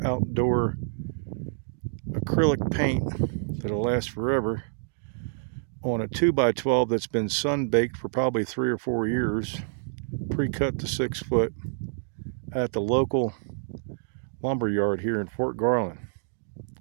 outdoor acrylic paint that'll last forever on a 2x12 that's been sun baked for probably 3 or 4 years, pre-cut to 6 foot at the local lumber yard here in Fort Garland.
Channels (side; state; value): left; silent; digital silence